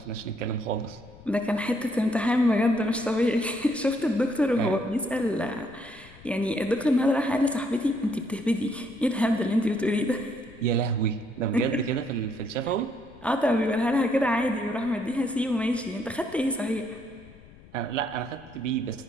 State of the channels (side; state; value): left; noise; rumble, 23 dB below the sound